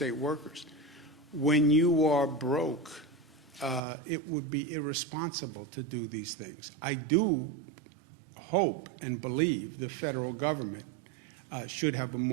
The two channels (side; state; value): left; drops out; at 3.8 s